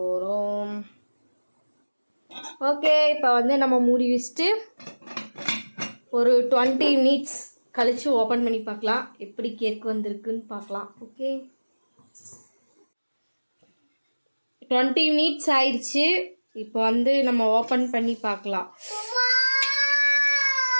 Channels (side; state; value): both; inverted; correlation -1.00